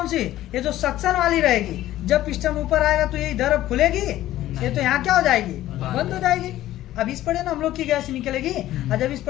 सी, ये जो सक्शन वाली रहेगी, जब पिस्टन ऊपर आएगा तो ये इधर अब खुलेगी, ये तो यहाँ क्या हो जाएगी, बंद हो जाएगी। अब इस पड़े ना हम लोग की गैस निकलेगी, और जब इस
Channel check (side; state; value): right; quieter; 14.3 dB